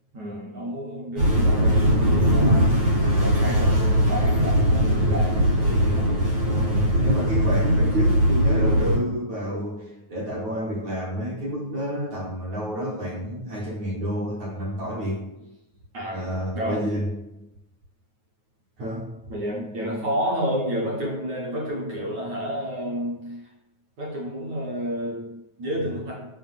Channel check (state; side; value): late; left; 9.3 ms